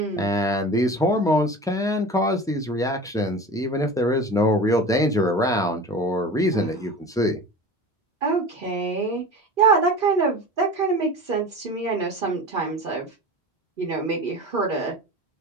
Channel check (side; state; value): both; normal; correlation 0.34